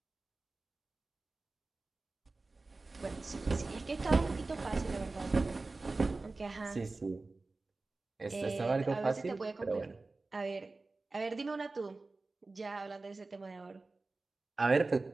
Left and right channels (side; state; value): left; quieter; 3.5 dB